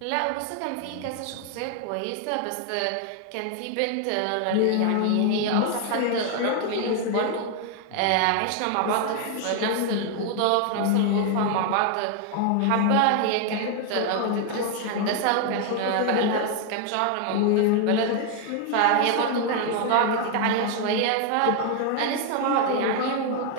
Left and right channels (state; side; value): different; both; correlation 0.00